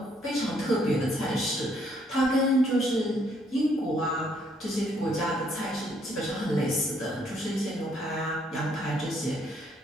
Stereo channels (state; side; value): normal; both; correlation 0.69